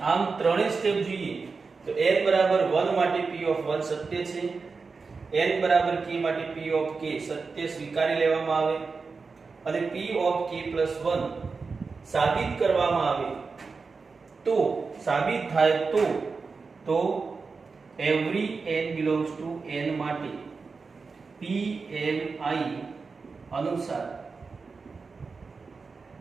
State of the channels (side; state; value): left; quieter; 4.6 dB